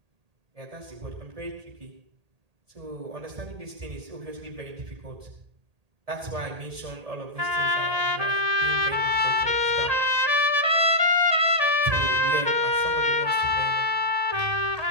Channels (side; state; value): left; late; 1.8 ms